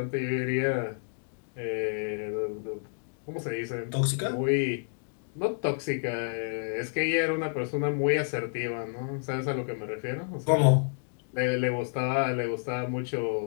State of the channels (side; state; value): right; silent; digital silence